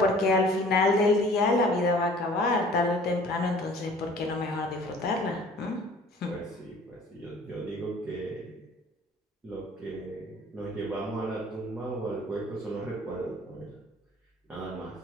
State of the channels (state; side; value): normal; both; correlation 0.51